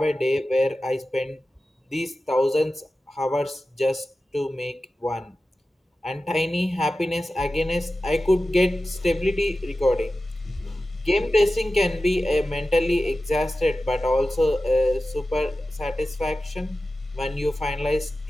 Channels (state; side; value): normal; both; correlation 0.94